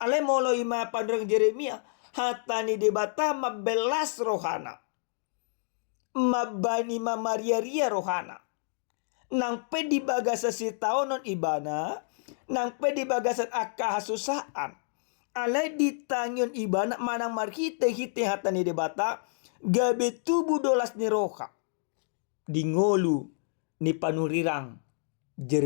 Ale molo ima pandrang Jeremia. Hatani debata mabelas rohana. Mabani mamaria-ria rohana. Nang pedi bagasa si taonon ibana. Nang pedi bagasan akahasusaan. Alay ditangyon ibana manang marhite-hite hatani debata. Gabe tubuh dolas ni roha. Dingolu ni panurirang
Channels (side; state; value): right; silent; digital silence